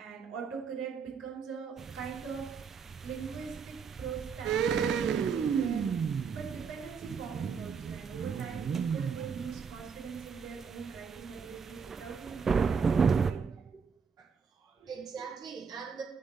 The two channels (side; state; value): left; quieter; 6.0 dB